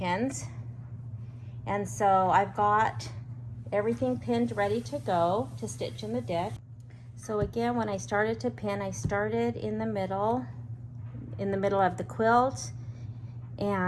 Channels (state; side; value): identical; both; correlation 1.00